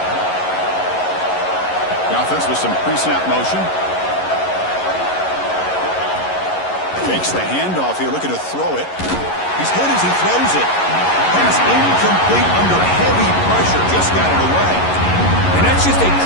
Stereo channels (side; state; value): right; late; 11 ms